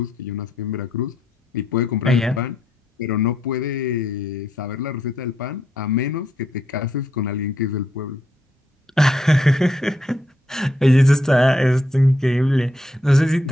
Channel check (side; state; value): both; normal; correlation 0.77